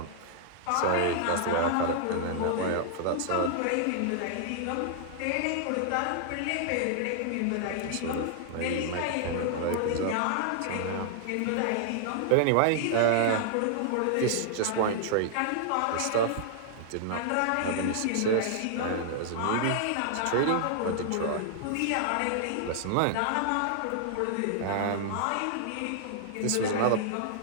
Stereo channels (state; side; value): different; both; correlation -0.01